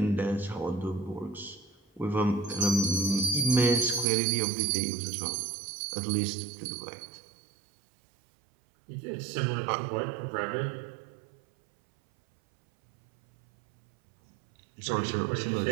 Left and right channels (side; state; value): left; drops out; at 4.0 s